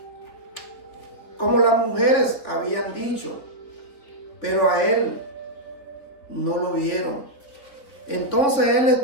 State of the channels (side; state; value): right; late; 3.8 ms